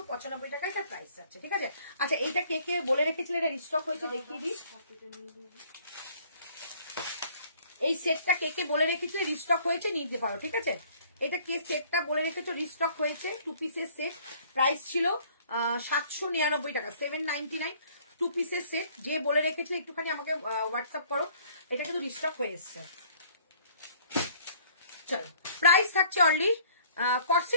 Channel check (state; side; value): inverted; both; correlation -0.57